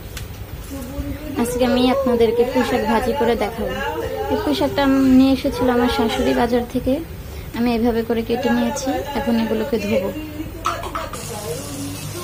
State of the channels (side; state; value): both; identical; correlation 1.00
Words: আজকে আমি আপনাদেরকে পুঁইশাক ভাজি করে দেখাবো। এই পুঁইশাকটা আমি নিয়ে এসেছিল আমার শাশুড়ি বাজার থেকে। আমি এভাবে করে কেটে নিয়েছি। এখন এগুলোকে ধুবো।